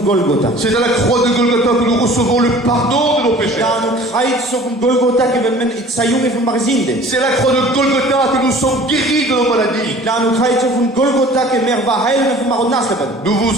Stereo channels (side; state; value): both; normal; correlation 0.47